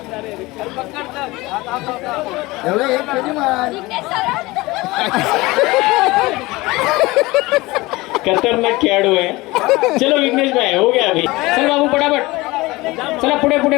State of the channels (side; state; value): right; quieter; 21.1 dB